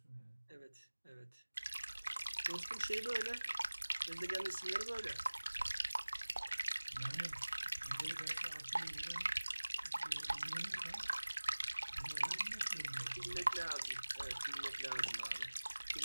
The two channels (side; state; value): both; inverted; correlation -1.00